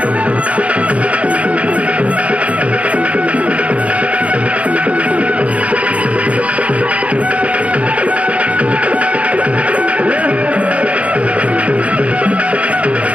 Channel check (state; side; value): late; left; 0.064 ms